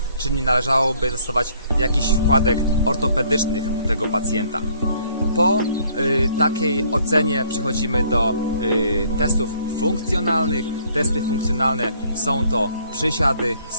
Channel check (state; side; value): inverted; both; correlation -0.62